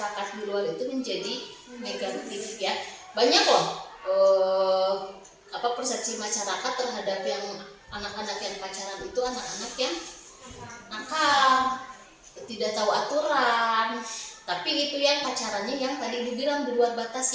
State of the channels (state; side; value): identical; both; correlation 1.00